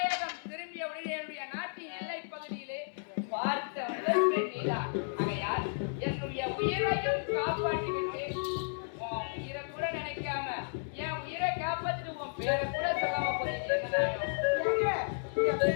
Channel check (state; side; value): silent; right; 56 dB below the other